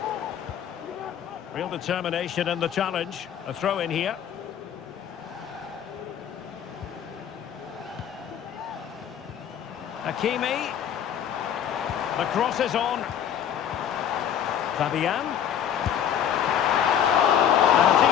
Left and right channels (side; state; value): right; quieter; 9.2 dB